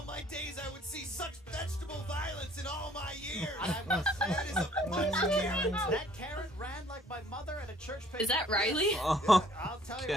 my days I would see such vegetable violence in all my years. I must say, That is a bunch of carrots. that carrot ran like my mother at a church picnic. Is that Riley? Oh, I'll tell you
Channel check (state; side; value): normal; both; correlation 0.58